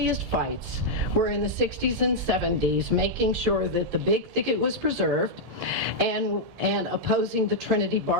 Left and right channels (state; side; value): late; left; 1.7 ms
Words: fights were in the 60s and 70s, making sure that the big thicket was preserved and opposing the Trinity